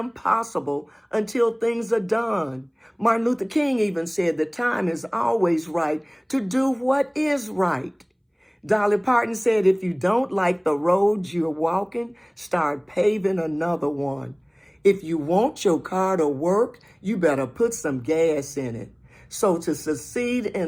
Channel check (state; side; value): identical; both; correlation 1.00